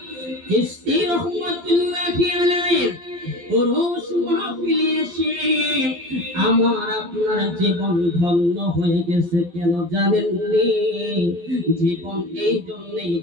চিশতি রহমাতুল্লাহি আলাইহি ওরস মাহফিলে এসে আমার আপনার জীবন ধন্য হয়ে গেছে। কেন জানেননি? জীবন এই জন্যই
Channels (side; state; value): left; late; 12 ms